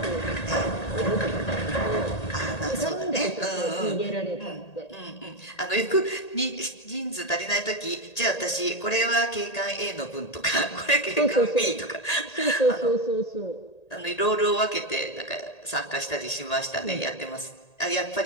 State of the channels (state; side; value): late; right; 1.8 ms